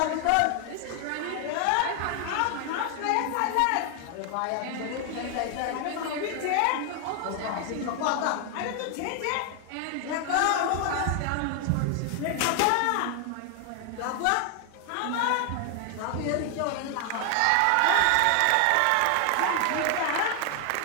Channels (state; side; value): different; both; correlation 0.00